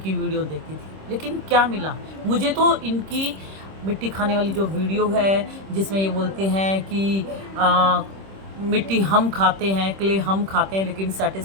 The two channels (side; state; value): left; late; 26 ms